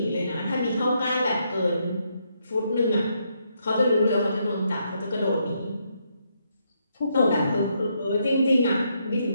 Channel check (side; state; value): both; inverted; correlation -0.77